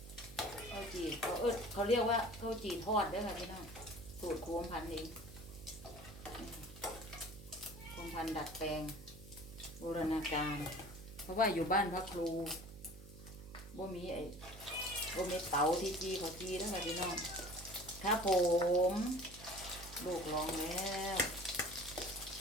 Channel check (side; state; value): right; noise; hum, 16 dB below the sound